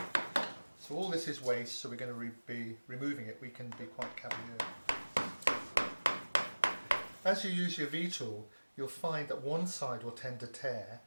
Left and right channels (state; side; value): inverted; both; correlation -1.00